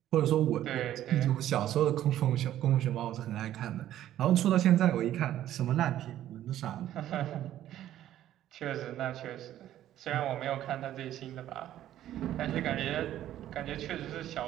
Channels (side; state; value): left; quieter; 12.4 dB